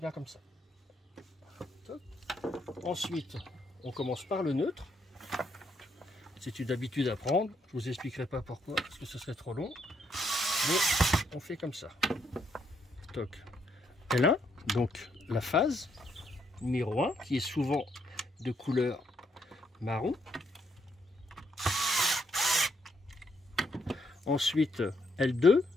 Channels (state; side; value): normal; both; correlation 0.74